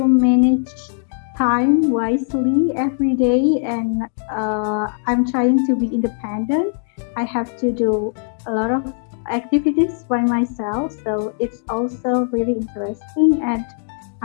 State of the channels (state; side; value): silent; right; digital silence